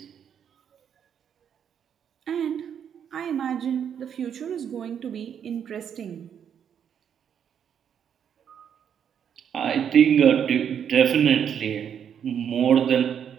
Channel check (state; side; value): quieter; left; 8.4 dB